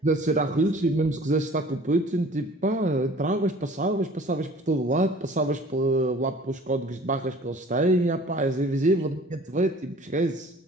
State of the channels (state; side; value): normal; both; correlation 0.48